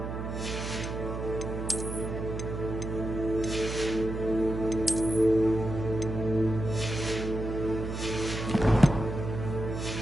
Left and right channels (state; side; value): noise; right; hum, 5 dB below the sound